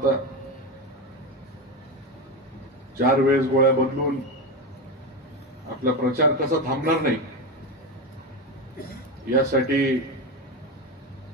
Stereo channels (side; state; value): both; normal; correlation 0.16